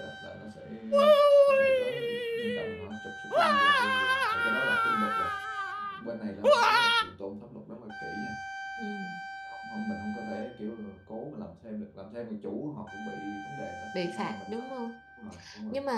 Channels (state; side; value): identical; both; correlation 1.00